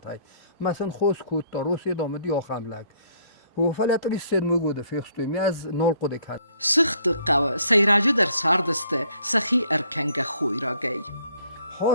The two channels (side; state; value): both; inverted; correlation -0.64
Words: مثلا خوز کد تا روسیه دامدی آخم لگ و فلت ریسید مگوده فیخستوی می از نال قده کد Сыгъдты хъæуæй сайражы дар сардысты сахи эркенге хъуйрагэй.